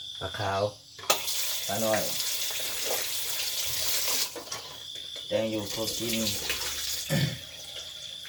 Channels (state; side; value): identical; both; correlation 1.00